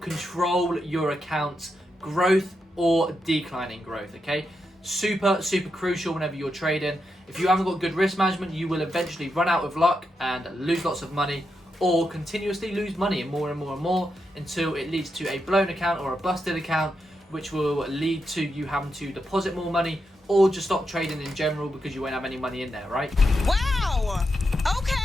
your account's growth or declining growth, okay? Super crucial whenever you're trading. If you haven't got good risk management, you will eventually run out of luck and lose lots of money, or continuously lose money and more until it leads to a blown account or a busted account, which will lead to you having to deposit more money or just stop trading in general because you won't have any money in there, right? Wow!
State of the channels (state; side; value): normal; both; correlation 0.85